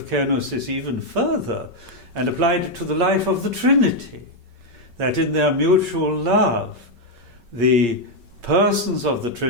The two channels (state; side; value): late; left; 5.3 ms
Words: kenosis even further and applied it to the life of the Trinity, that in their mutual love, the persons of the